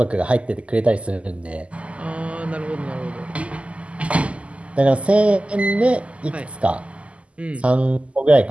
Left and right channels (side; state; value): left; late; 0.060 ms